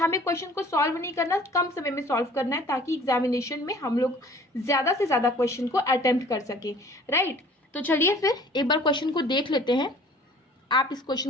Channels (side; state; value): both; normal; correlation 0.50